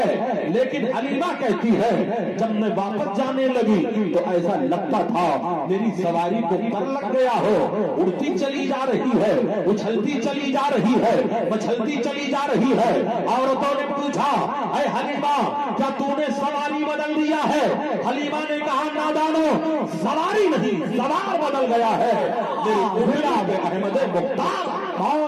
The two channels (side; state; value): both; identical; correlation 1.00